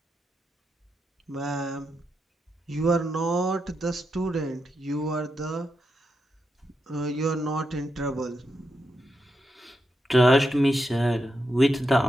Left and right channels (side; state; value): both; normal; correlation 0.85